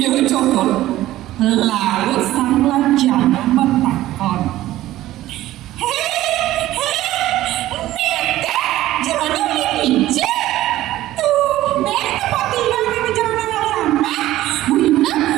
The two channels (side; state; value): left; quieter; 15.1 dB